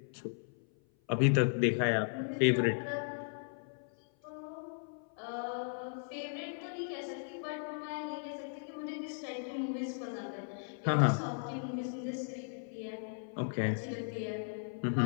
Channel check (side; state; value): right; silent; 53 dB below the other